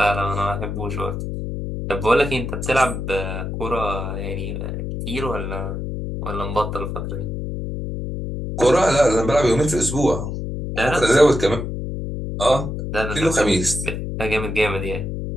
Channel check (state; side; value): noise; left; hum, 5 dB below the sound